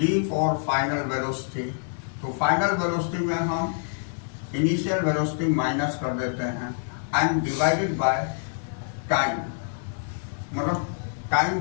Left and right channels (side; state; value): right; silent; 58 dB below the other